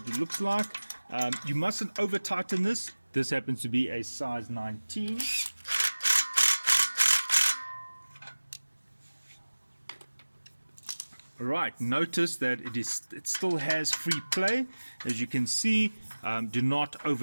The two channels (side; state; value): both; inverted; correlation -1.00